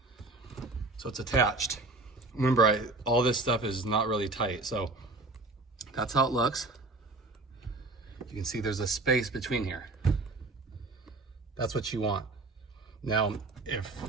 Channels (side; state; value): left; quieter; 3.2 dB